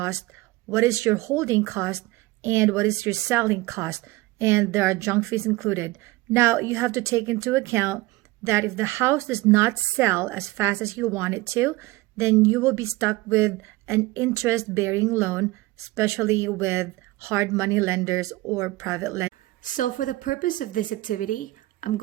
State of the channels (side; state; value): left; quieter; 19.8 dB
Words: what is your holding cost, and what is your selling cost. And there are junk fees included. Now, you have to take into account that if the house does not sell as fast as you want it to, then you will be stuck with an interest-bearing loan, especially with hard money lenders or private lenders. So for the purpose of this activity, I'm